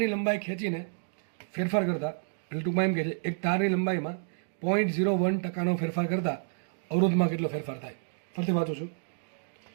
લંબાઈ ખેંચીને ફેરફાર કરતા, એટલે ટૂંકમાં એમ કહે છે એક તારની લંબાઈમાં 0.01% ફેરફાર કરતા અવરોધમાં કેટલો ફેરફાર થાય? ફરીથી વાંચું છું,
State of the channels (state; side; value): silent; left; digital silence